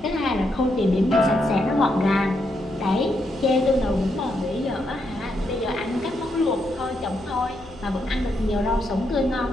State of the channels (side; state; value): left; noise; rumble, 22 dB below the sound